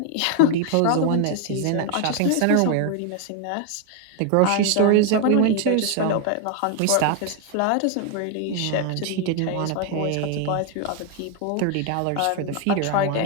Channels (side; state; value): both; different; correlation 0.01